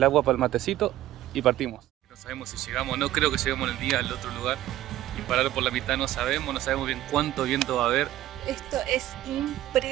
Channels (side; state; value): left; quieter; 14.2 dB